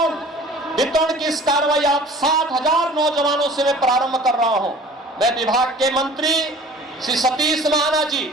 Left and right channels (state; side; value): normal; both; correlation 0.46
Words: वितरण की इस कार्रवाई आप 7,000 नौजवानों से मैं प्रारंभ कर रहा हूं। मैं विभाग के मंत्री श्री सतीश महाना जी,